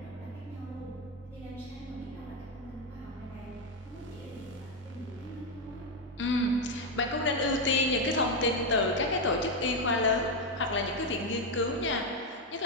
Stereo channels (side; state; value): both; normal; correlation 0.05